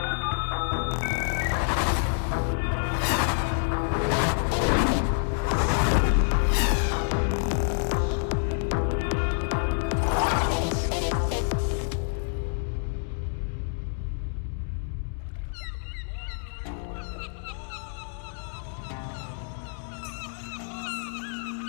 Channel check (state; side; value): silent; right; digital silence